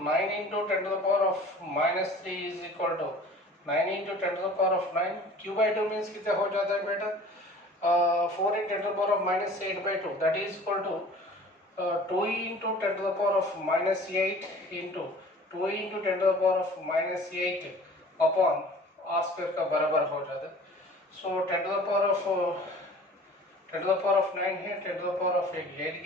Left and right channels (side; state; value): both; normal; correlation 0.46